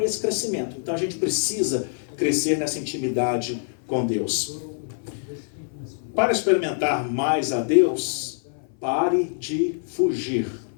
esse crescimento. Então a gente precisa crescer nessa intimidade com Deus. Para experimentar mais a Deus, pare de fugir.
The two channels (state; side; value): silent; right; 58 dB below the other